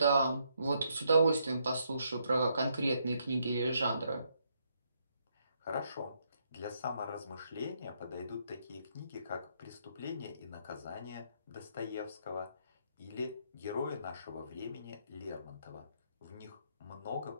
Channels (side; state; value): both; inverted; correlation -0.75